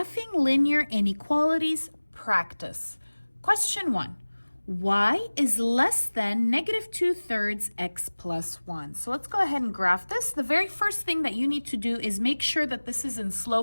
linear inequalities practice. Question 1. Y is less than negative 2/3 x plus 1. So let's go ahead and graph this. The very first thing that you need to do is make sure that this is in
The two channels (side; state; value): both; inverted; correlation -1.00